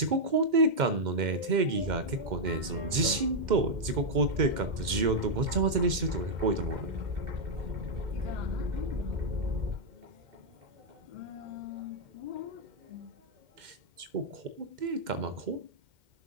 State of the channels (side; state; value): left; late; 2.1 ms